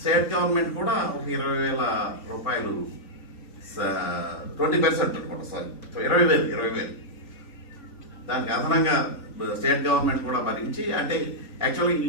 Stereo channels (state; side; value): late; right; 3.9 ms